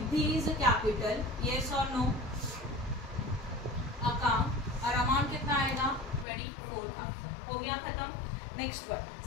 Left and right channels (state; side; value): drops out; right; at 6.2 s